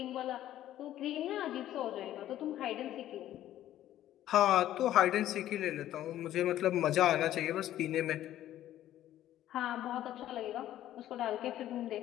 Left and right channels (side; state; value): right; quieter; 12.8 dB